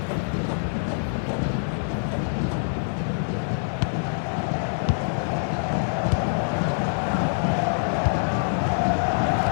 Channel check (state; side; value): silent; right; digital silence